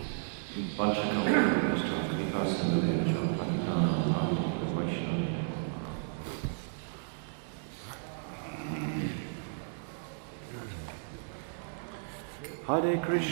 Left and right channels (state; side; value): silent; left; 56 dB below the other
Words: Vanchakam Vishnu Kripa Sindhudevacha Patitanam Bhakti Vaishnava. Hare